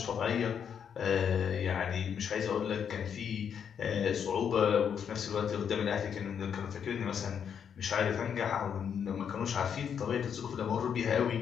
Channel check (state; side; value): quieter; right; 7.7 dB